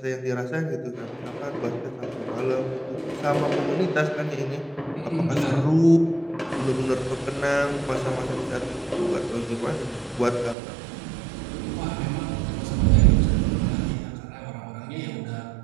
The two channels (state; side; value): drops out; left; at 10.6 s